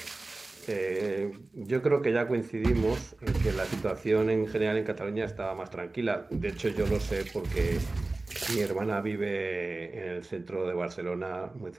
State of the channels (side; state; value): left; quieter; 3.2 dB